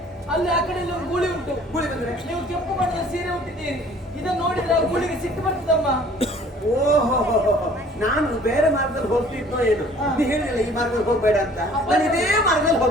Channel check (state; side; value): normal; both; correlation 0.53